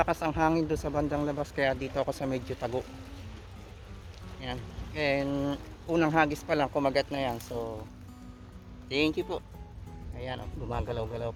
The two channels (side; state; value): both; identical; correlation 1.00